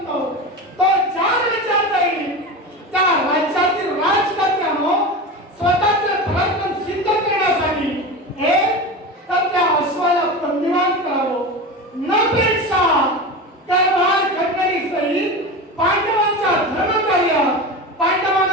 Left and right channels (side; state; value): both; normal; correlation 0.26